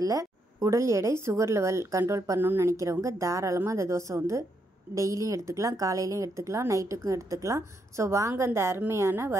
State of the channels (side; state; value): both; normal; correlation 0.78